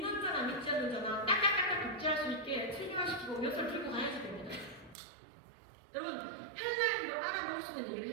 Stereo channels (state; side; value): drops out; left; at 5.0 s